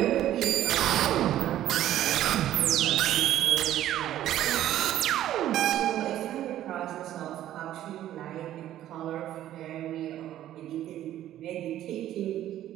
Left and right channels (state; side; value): quieter; left; 12.6 dB